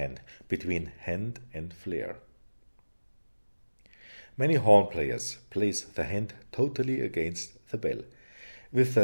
between hand and flare. Many horn players place the hand totally against the bell, with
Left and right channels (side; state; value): both; inverted; correlation -1.00